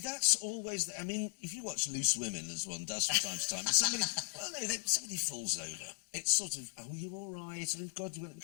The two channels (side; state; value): right; silent; digital silence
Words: always... I mean, if you watch Loose Women, as one does from time to time, somebody... Well, no, somebody falls over. It's sort of, oh, you all right? Oh, God, you want to